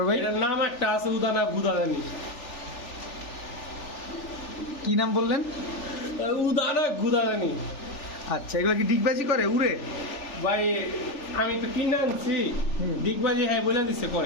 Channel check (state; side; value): late; right; 3.4 ms